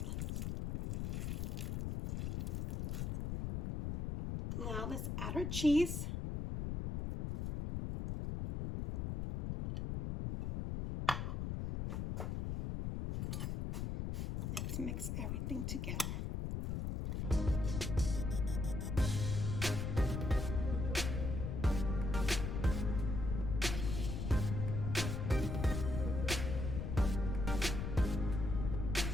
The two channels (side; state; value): left; noise; rumble, 2 dB below the sound